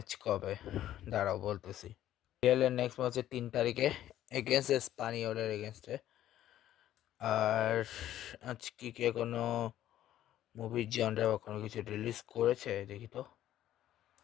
কবে, দাঁড়াও বলতেছি। রিয়েলের নেক্সট ম্যাচ হচ্ছে 3 তারিখে এগেনস্ট স্পানিওলের এগেনস্টে। আর আজকে কি কোনো মুভির জনরা বা কোনো কিছু রিলিজ করেছে দেখি তো।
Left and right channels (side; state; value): right; quieter; 12.5 dB